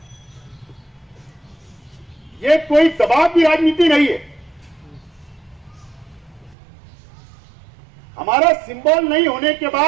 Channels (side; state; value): left; drops out; at 6.6 s